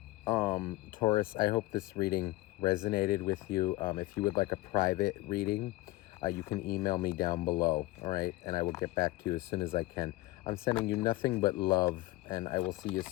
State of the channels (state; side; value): quieter; right; 19.0 dB